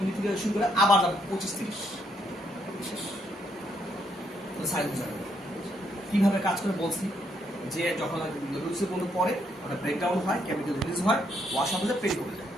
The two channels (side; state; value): both; normal; correlation 0.74